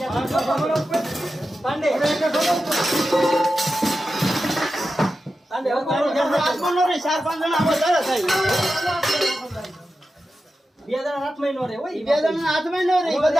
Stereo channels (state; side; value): normal; both; correlation 0.91